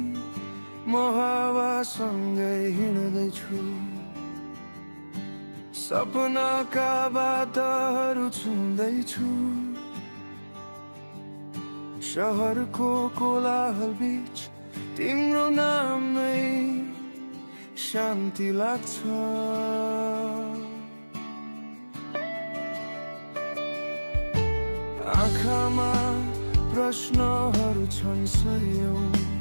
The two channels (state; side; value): inverted; both; correlation -1.00